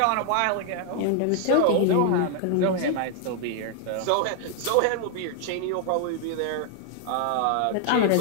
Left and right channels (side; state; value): both; different; correlation 0.00